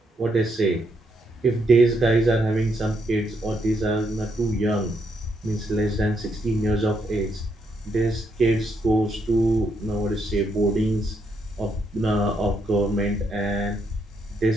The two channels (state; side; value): normal; both; correlation 0.77